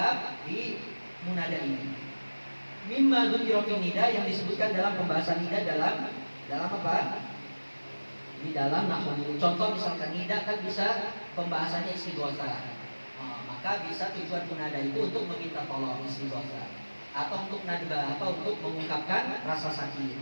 di munada ini. Mimma dzukira fi nida, yang disebutkan dalam pembahasan nida dalam apa? Di dalam nahwu. Contoh misalkan nida kan bisa pembahasannya istighotsah. Maka bisa tujuan munada itu untuk meminta tolong, istighotsah, atau untuk nadbah, atau untuk mengungkapkan rasa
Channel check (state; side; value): inverted; both; correlation -1.00